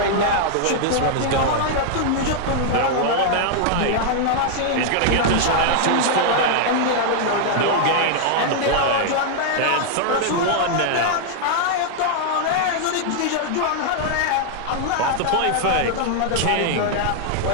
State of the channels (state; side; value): different; both; correlation 0.00